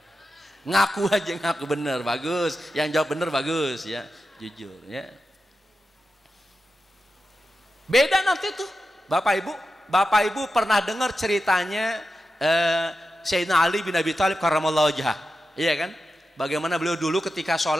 Ngaku aja, ngaku bener, bagus. Yang jawab bener bagus, ya, jujur, ya. Beda nanti tuh, Bapak Ibu pernah dengar ceritanya Sayyidina Ali bin Abi Thalib karramallahu wajhah, iya kan? Bagaimana beliau dulu ketika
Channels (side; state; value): both; normal; correlation 0.91